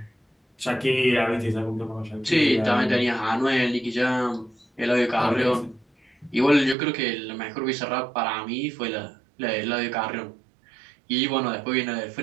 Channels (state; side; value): drops out; left; at 6.8 s